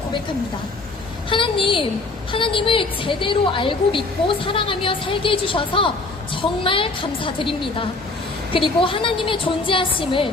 하나님을 제대로 알고 믿고 사랑하며 살게 해주셔서 정말 감사드립니다. 그리고 하나님의 존재하심을,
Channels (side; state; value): right; quieter; 3.4 dB